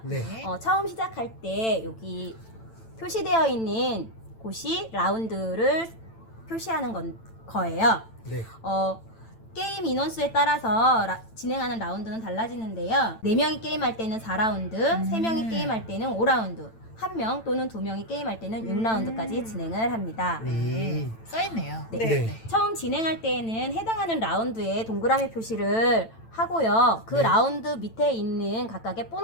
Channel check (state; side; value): late; right; 9.0 ms